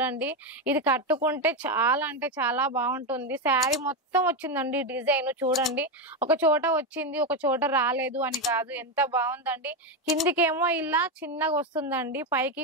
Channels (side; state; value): both; normal; correlation 0.10